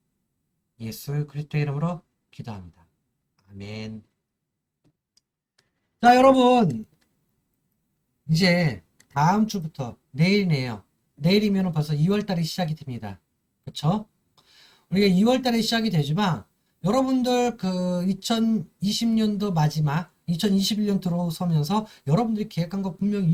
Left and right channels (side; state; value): both; identical; correlation 1.00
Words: 예수 그리스도의 이름으로 기도합니다. 아멘. 자, 여러분, 이제 다음 주부터 내일이네요. 내일이면 벌써 2월달이 시작이 됩니다. 그쵸? 우리가 2월달에 시작이 되지만 여러분들 그 2020년도 마지막 2021년 들어서면서 여러분들이 계획한 거 분명히